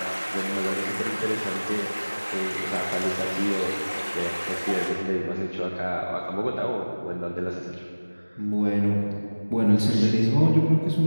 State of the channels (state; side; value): inverted; both; correlation -1.00